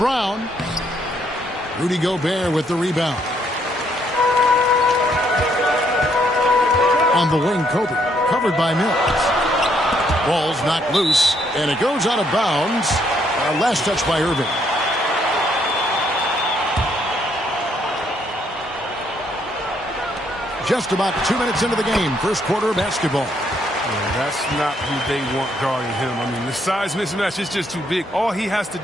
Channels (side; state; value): both; normal; correlation 0.71